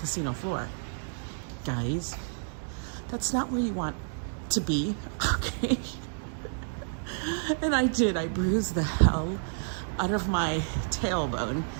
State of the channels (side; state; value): left; silent; digital silence